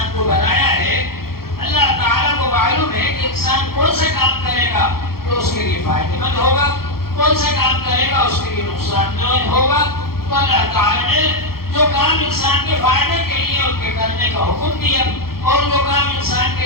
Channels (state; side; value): late; right; 0.94 ms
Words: کو بنایا ہے، اللہ تعالیٰ کو معلوم ہے کہ انسان کون سا کام کرے گا تو اس کے لیے فائدہ مند ہوگا، کون سا کام کرے گا اس کے لیے نقصان دہ ہوگا۔ تو اللہ تعالیٰ نے جو کام انسان کے فائدے کے لیے ان کے کرنے کا حکم دیا، اور جو کام انسان کے